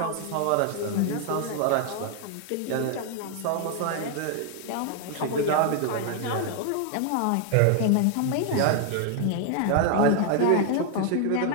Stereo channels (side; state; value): both; different; correlation 0.00